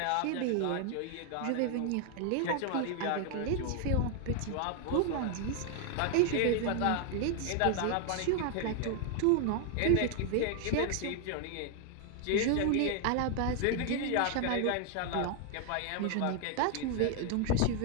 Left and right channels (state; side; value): different; both; correlation 0.00